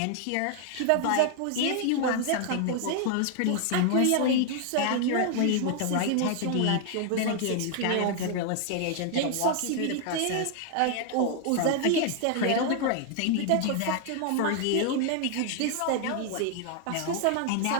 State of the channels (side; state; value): both; different; correlation 0.00